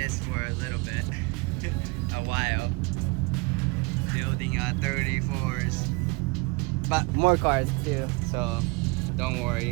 for a little bit. A while. Building 34s. But more cars too, so don't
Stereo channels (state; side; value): quieter; left; 27.9 dB